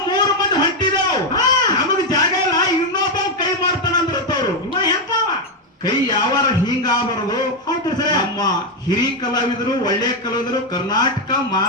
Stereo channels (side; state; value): both; normal; correlation 0.05